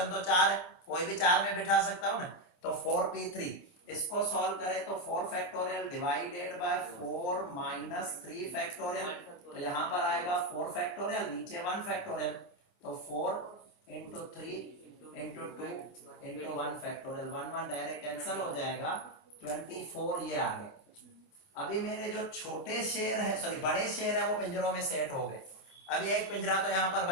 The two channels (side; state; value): right; late; 27 ms